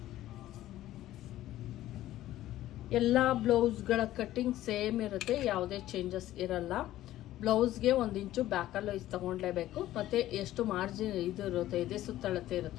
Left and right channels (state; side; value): quieter; right; 14.3 dB